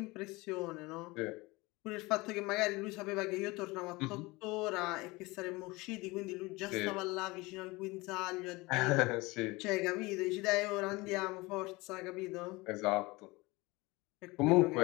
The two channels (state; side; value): quieter; right; 22.9 dB